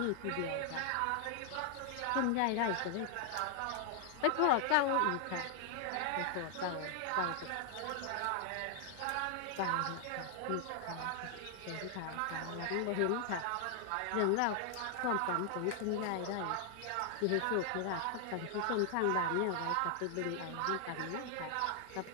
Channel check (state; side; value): different; both; correlation 0.00